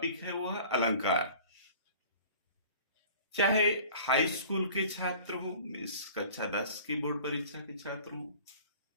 है वो है अलंकार। चाहे हाई स्कूल के छात्र हो, इस कक्षा 10 की बोर्ड परीक्षा के छात्र हो,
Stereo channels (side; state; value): both; inverted; correlation -0.46